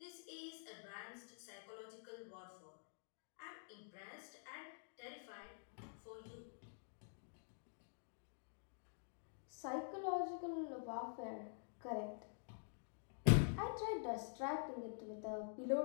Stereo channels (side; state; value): right; silent; digital silence